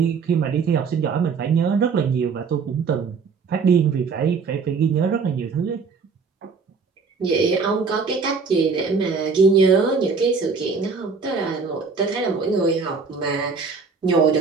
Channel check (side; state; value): left; quieter; 5.1 dB